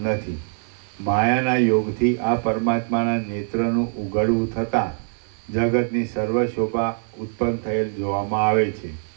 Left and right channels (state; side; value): silent; left; 56 dB below the other